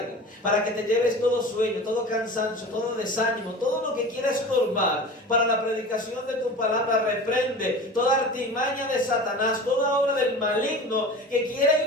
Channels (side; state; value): both; normal; correlation 0.35